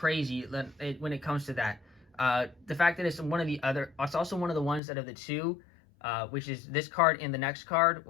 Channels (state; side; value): drops out; right; at 4.8 s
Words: when it comes to that. The fact that it's also one of the ones out of the 2, which is this card and the next card,